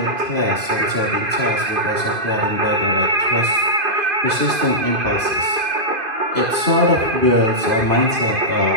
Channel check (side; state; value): left; late; 2.5 ms